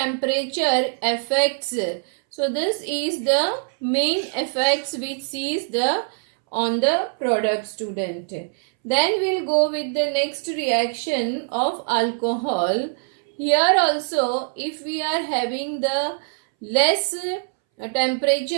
affects. So this is the main effects which is the on the product, student. Then we'll go with the next reaction of alcohol. Here also, if we are having the less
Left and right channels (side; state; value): left; silent; 63 dB below the other